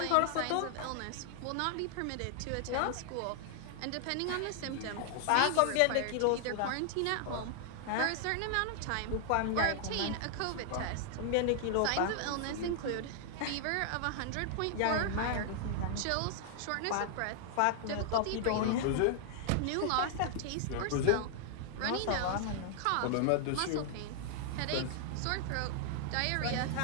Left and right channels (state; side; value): different; both; correlation -0.01